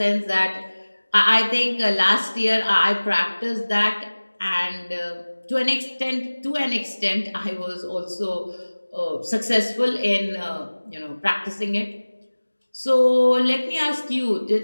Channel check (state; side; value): inverted; both; correlation -1.00